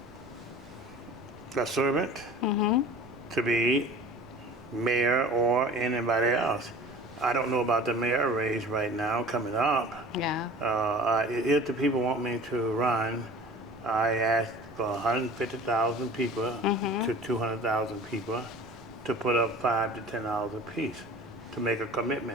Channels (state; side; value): noise; right; rumble, 23 dB below the sound